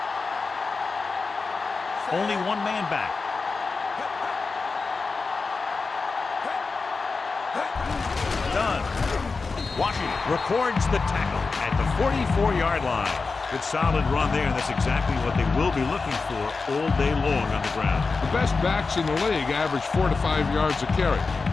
Only one man back. Done. Washington records the tackle at the 44-yard line. Good solid run there, and that's exactly what they will be looking for all day long on the ground. The best backs in the league average 4 to 5 yards a carry.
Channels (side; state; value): right; quieter; 4.3 dB